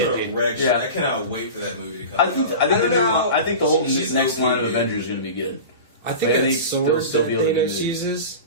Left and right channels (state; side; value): inverted; both; correlation -0.32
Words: gonna wreck shit. yeah. I cannot wait for that movie to come I out. think I don't know. I think the whole She's next line of OP, dude. Avengers is gonna be good. I think Like, I that think sword they'll still that be able to Thanos do it. uses.